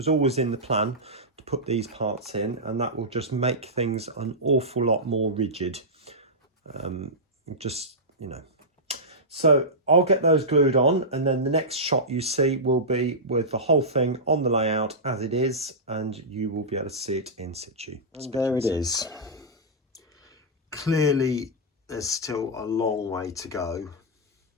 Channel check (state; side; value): normal; both; correlation -0.12